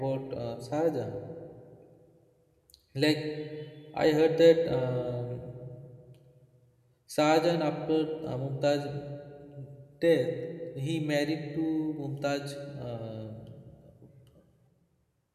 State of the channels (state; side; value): identical; both; correlation 1.00